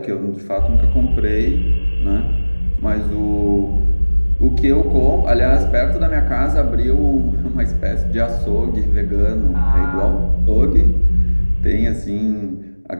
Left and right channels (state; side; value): inverted; both; correlation -1.00